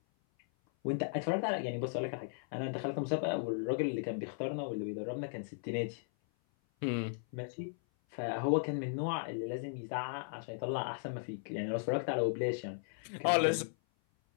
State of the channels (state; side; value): silent; right; 53 dB below the other